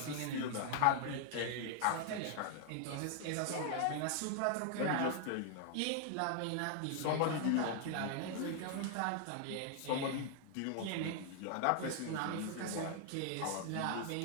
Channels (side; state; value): both; different; correlation 0.00